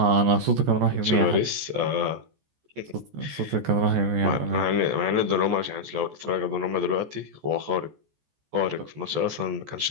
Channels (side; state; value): left; late; 14 ms